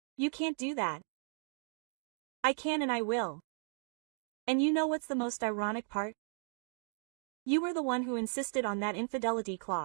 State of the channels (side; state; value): left; silent; digital silence